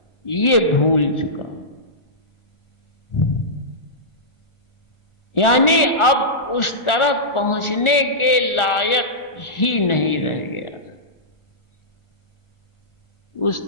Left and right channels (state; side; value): late; right; 1.4 ms